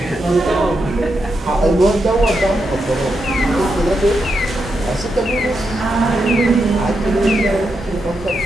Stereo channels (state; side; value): normal; both; correlation 0.84